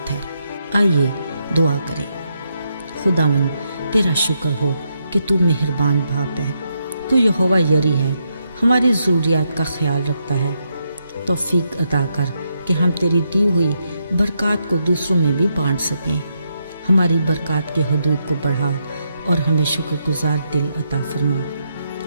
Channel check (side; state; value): both; inverted; correlation -0.81